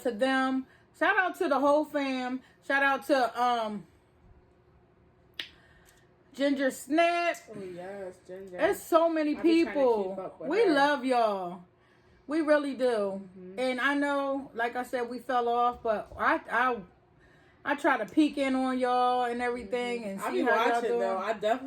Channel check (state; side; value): identical; both; correlation 1.00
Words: to them. Shout out to the whole fam. Shout out to Ginger Snap. Oh yes, Ginger. There's so many people. We love y'all. We really do. And I know, like I said, we fell off, but I try to peek in on y'all and everything and see how y'all doing. Though. I